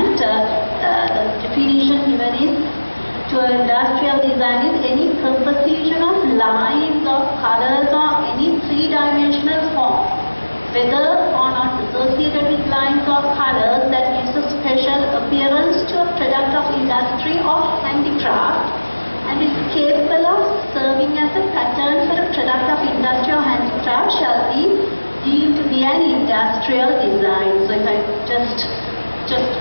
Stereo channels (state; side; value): inverted; both; correlation -1.00